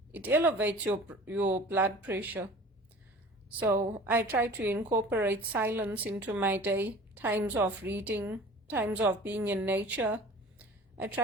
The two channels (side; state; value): both; normal; correlation 0.43